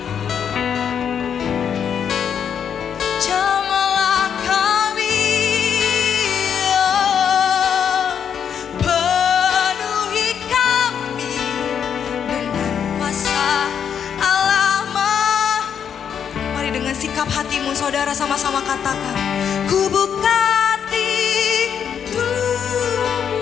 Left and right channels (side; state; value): right; quieter; 7.9 dB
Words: jamalah kami, penuhi kami dengan kuasa Allah. Mari dengan sikap hatimu saudara sama-sama katakan, ku buka hati.